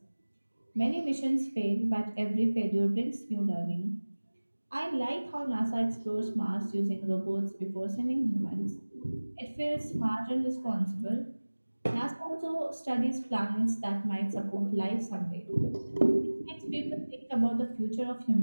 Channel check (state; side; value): inverted; both; correlation -1.00